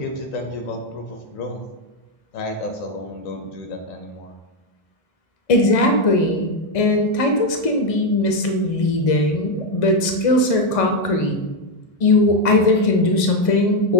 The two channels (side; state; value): right; late; 1.6 ms